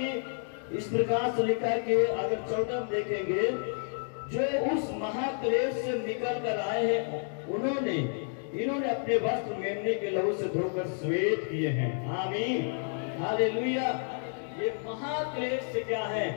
इस प्रकार से लिखा है कि अगर 14 देखेंगे, जो उस महाक्लेश से निकल कर आए हैं इन्होंने अपने वस्त्र मेमने के लहू से धोकर श्वेत किए हैं। आमीन, हालेलुया। ये महाक्लेश से क्या है?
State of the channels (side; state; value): right; silent; 58 dB below the other